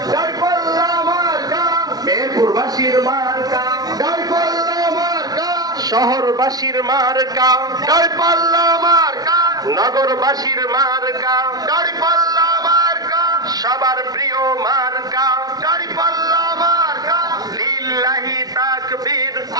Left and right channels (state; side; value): late; left; 0.19 ms